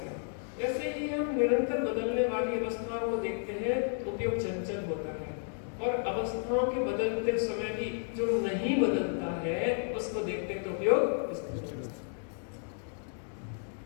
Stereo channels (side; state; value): right; silent; 56 dB below the other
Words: ऐसे ही हम निरंतर बदलने वाली अवस्थाओं को देखते हैं तो उपयोग चंचल होता है, और अवस्थाओं के बदलते समय भी जो नहीं बदलता है उसको देखते हैं तो उपयोग स्थिर होता है।